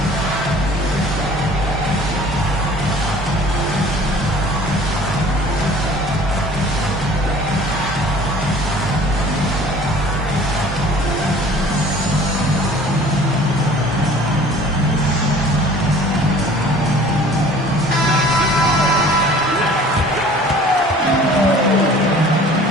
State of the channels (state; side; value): normal; both; correlation 0.49